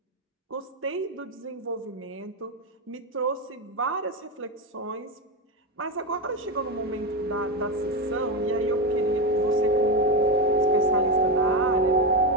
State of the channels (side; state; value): both; normal; correlation 0.12